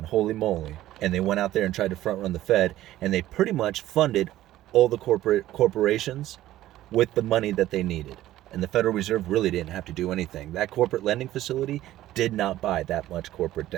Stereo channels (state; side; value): quieter; left; 14.4 dB